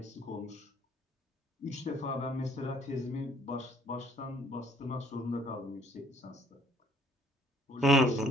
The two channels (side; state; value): both; normal; correlation 0.61